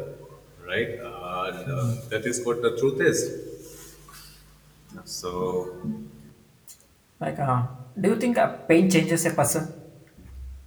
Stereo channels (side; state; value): both; identical; correlation 1.00